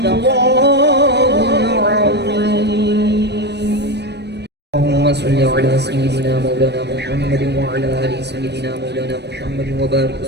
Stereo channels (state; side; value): late; left; 0.49 ms